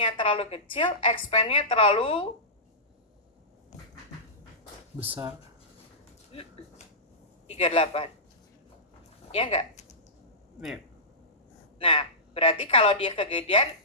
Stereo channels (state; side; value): normal; both; correlation -0.18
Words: terlalu kecil, expand-nya terlalu besar. 38. Ya enggak? Iya. Nah, berarti kalau dia kegedean,